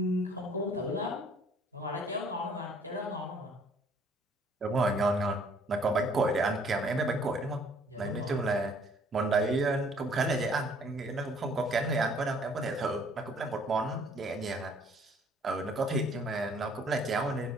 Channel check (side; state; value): both; normal; correlation 0.60